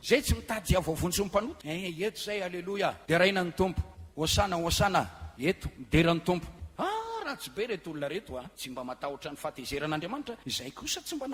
zay tsy mitady avavontsy ny mpanota. Eto zay, aleloia. Dia raina ny tompo, hosana hosana, eto midera ny tompo. Tsy be reto olona reto tsy mba matahotra ny fahatezeran'Andriamanitra. Izay kosa tsy mba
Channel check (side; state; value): both; identical; correlation 1.00